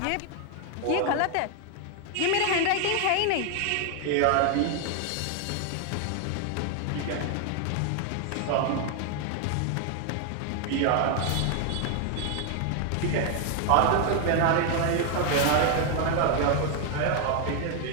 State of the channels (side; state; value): both; different; correlation 0.01